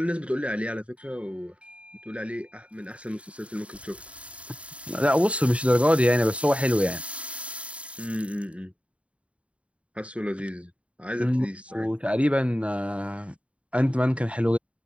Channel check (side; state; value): left; late; 0.063 ms